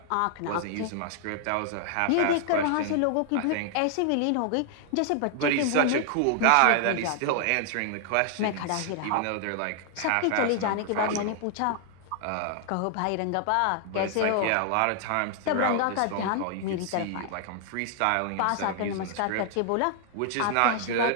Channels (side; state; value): both; different; correlation 0.00